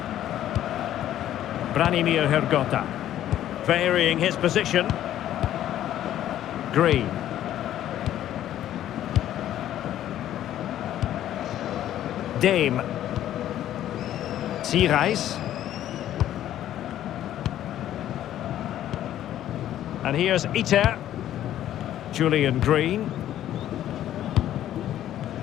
Branimir Hergota. Varying his position. Green. Dame. Sierhuis. And here's Ita. Julian Green.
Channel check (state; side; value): quieter; right; 12.1 dB